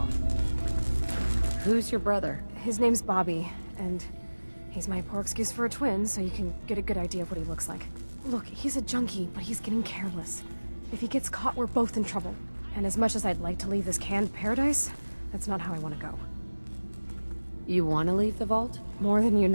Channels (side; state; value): both; inverted; correlation -1.00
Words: Who's your brother? His name's Bobby, and he's my poor excuse for a twin, so you can get a good idea of what he looks like. Look, he's a junkie, but he's getting careless. If he gets caught, we're both in trouble. And as much as I'd like to leave this canned paradise, that's not how I want to go. You want to leave the vault? More than you